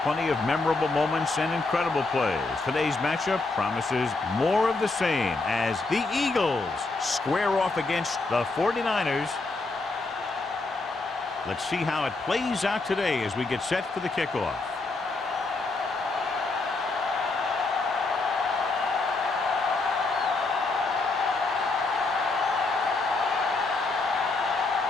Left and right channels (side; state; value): right; quieter; 3.5 dB